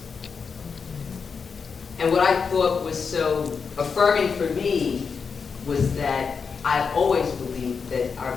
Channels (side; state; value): right; quieter; 5.6 dB